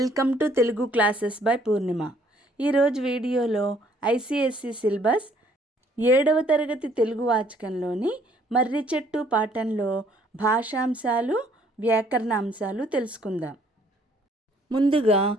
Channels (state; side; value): normal; both; correlation 0.63